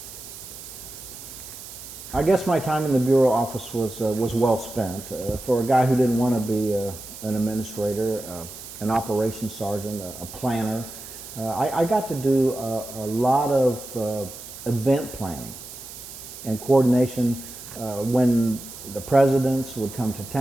I guess my time in the bureau office was well spent. For a guy who didn't want to be an administrator, an operations sergeant, a planner, I got to do a lot of event planning and coordination. When the presidents would come to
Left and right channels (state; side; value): noise; right; hiss, 13 dB below the sound